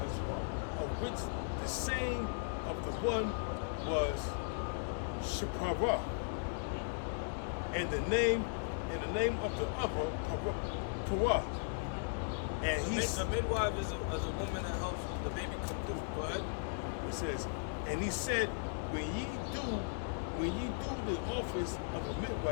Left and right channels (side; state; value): right; silent; digital silence